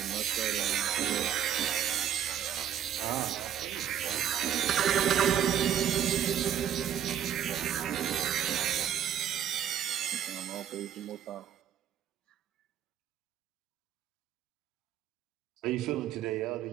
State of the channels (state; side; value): quieter; left; 9.6 dB